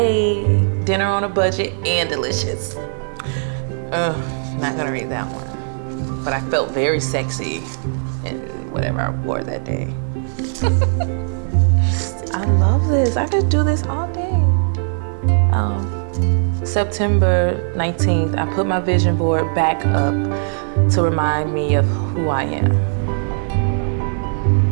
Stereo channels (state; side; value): silent; left; 57 dB below the other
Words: dinner on a budget and delicious. Not gonna read that one. But I felt very sexy in whatever I wore that day. I love this. I could do this all day. September 19th, I put my vision board back up to remind me of who I am.